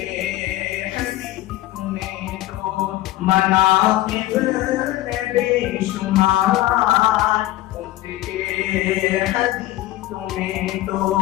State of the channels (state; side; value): quieter; right; 16.0 dB